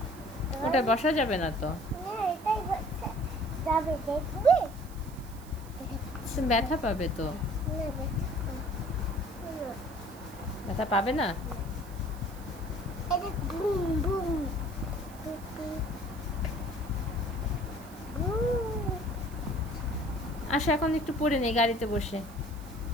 ওটা বসা যাবে না তো। না, এটাই বসা যাবে, দেখবে? তুমি ব্যথা পাবে তো। না, ব্যথা না। ব্যথা পাবে না? এটা বুম বুম বুম। আসো এখন একটু পড়ে নেই গাড়িতে বসে।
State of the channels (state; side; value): noise; right; hiss, 21 dB below the sound